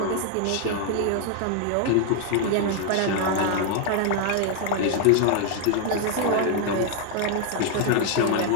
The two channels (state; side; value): different; both; correlation 0.00